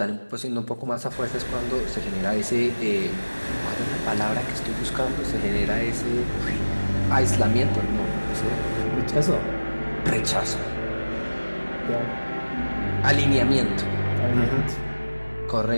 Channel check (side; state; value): both; inverted; correlation -1.00